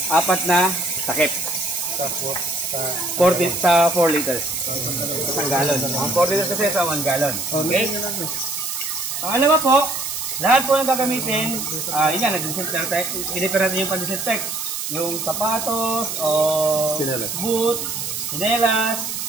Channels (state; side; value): noise; right; hiss, 4 dB below the sound